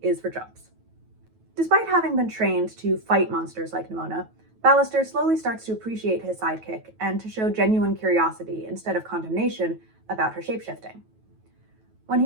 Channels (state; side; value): late; left; 9.2 ms